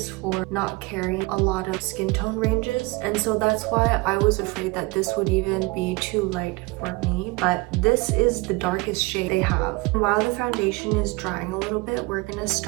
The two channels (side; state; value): left; quieter; 24.5 dB